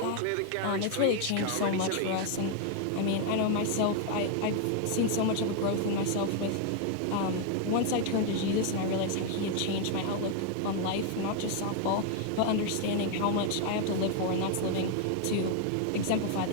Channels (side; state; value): both; different; correlation 0.00